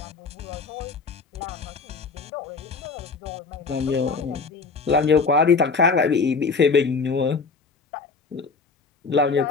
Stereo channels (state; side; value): quieter; right; 4.6 dB